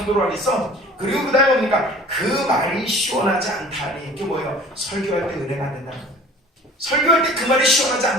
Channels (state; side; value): normal; both; correlation 0.46